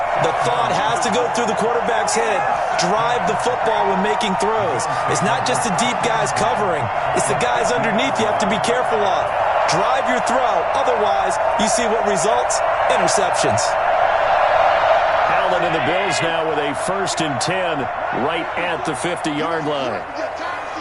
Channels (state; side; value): identical; both; correlation 1.00